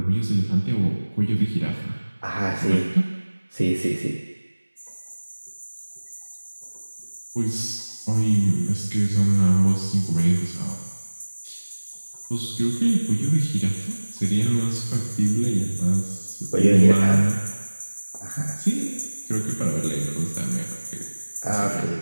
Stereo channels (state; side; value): inverted; both; correlation -1.00